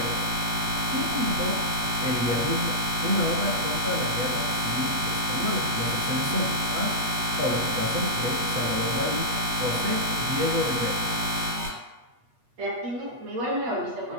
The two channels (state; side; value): late; left; 8.3 ms